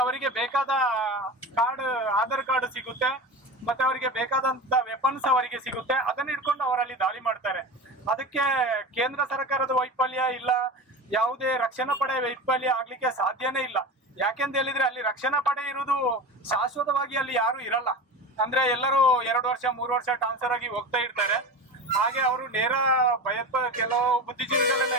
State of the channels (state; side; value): normal; both; correlation 0.29